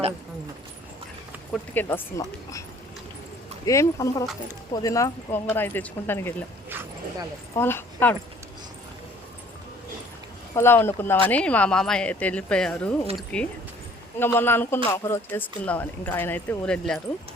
కొట్టుకెళ్ళి వస్తున్నాం. ఏమి కనపడలేదు. పుదీనా గోంగూర అయితే తెచ్చుకుంటానికి వెళ్ళాం. పొలా వండుకుందామని మా మామయ్య అయితే వెళ్ళిపోయారు ఊరికి. ఇంకా మొన్న అనుకున్నాం ఒకరోజు చేసుకుందామని. ఇంకా ఆయన అయితే ఊరు వెళ్ళారు.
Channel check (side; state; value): both; normal; correlation 0.55